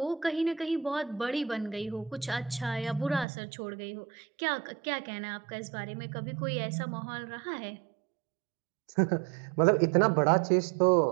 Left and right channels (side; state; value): left; drops out; at 3.2 s